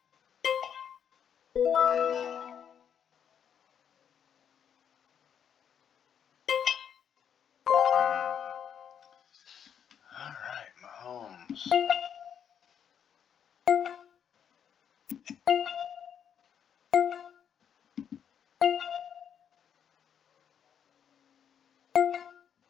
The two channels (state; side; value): quieter; right; 8.3 dB